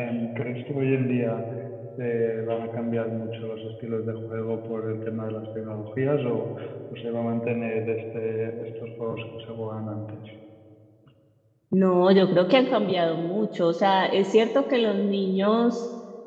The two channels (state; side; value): identical; both; correlation 1.00